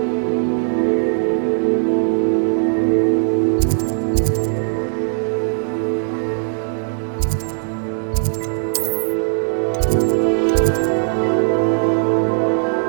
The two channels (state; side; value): silent; left; digital silence